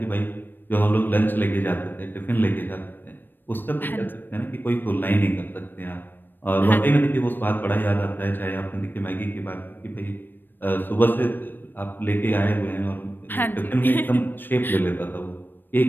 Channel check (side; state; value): right; late; 0.093 ms